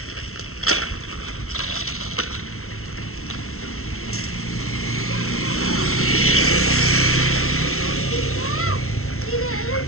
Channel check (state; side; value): late; right; 0.63 ms